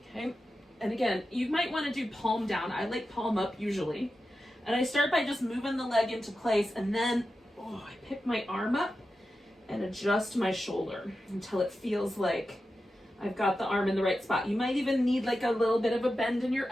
Okay, and again, you might wanna do palm down. I like palm up usually. And I start by just moving the leg into place, and then I pick my arm up and adjust my shoulder until it feels like I've got the arm in the right spot. You might even need like a little bit of a bend in your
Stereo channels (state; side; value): normal; both; correlation 0.92